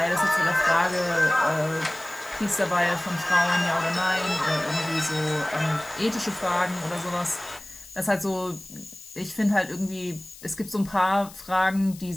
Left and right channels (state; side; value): noise; left; hiss, 18 dB below the sound